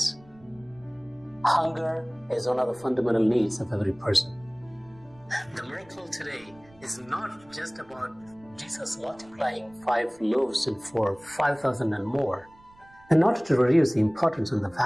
Hunger is one of the fundamental needs of every person. The miracle today is not just about Jesus multiplying 5 loaves and for 5,000 and more, and not to reduce the importance and the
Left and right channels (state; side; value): noise; right; rumble, 27 dB below the sound